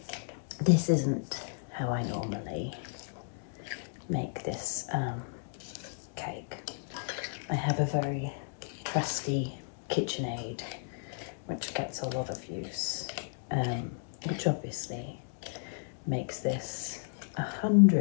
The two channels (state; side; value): silent; right; digital silence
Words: this isn't how I normally make this cake. I have a very trusty KitchenAid which gets a lot of use, which obviously makes this